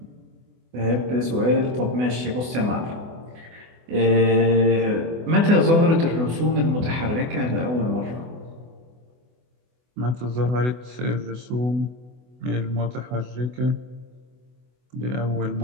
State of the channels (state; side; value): late; left; 24 ms